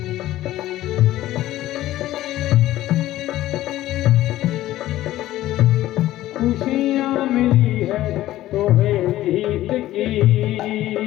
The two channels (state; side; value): quieter; right; 14.8 dB